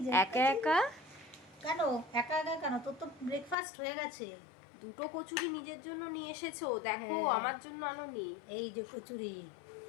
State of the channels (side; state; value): right; drops out; at 3.6 s